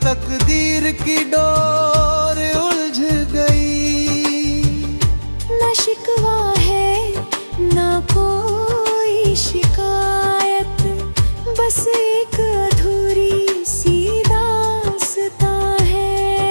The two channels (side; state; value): both; inverted; correlation -1.00